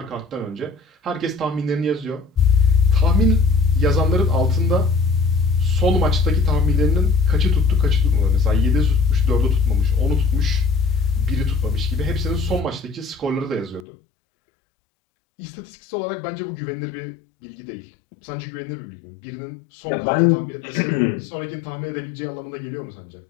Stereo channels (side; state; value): right; drops out; at 13.9 s